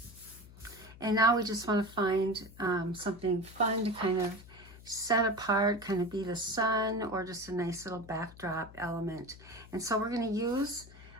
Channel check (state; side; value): noise; left; hum, 19 dB below the sound